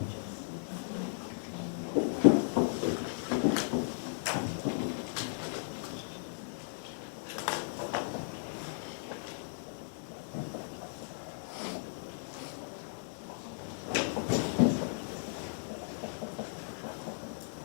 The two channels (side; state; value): right; silent; digital silence